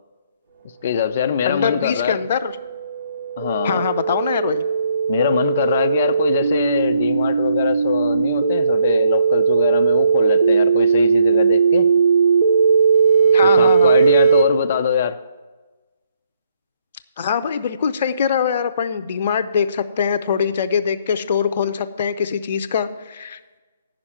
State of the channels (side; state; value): both; inverted; correlation -0.70